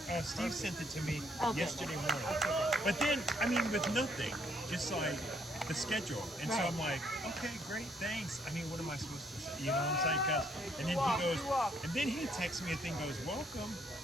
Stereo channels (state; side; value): normal; both; correlation 0.69